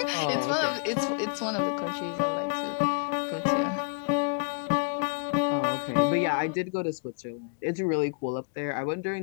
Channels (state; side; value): quieter; right; 36.4 dB